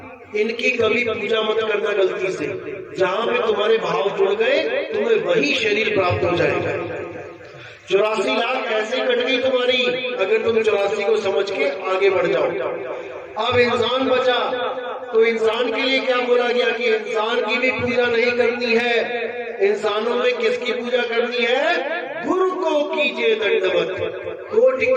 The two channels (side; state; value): both; identical; correlation 1.00